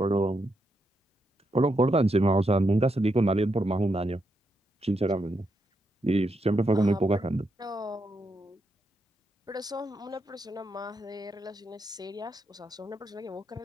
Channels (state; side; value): normal; both; correlation 0.82